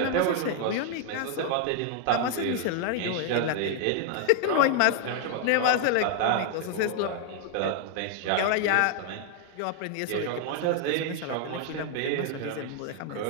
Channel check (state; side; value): different; both; correlation 0.00